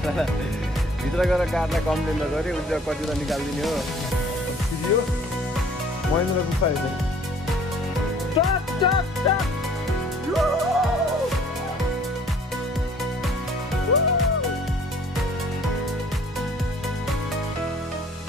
भित्र गएर कार्डलाई कम्प्लेन गरेँ उसले कति त निकालिदिने हो छिरियो महेन्द्र गुफा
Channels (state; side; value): normal; both; correlation 0.55